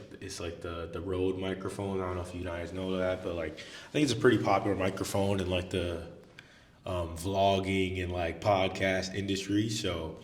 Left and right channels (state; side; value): identical; both; correlation 1.00